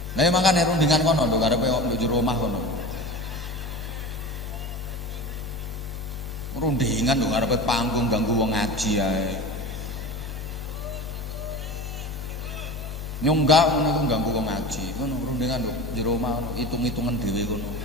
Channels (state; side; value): normal; both; correlation 0.31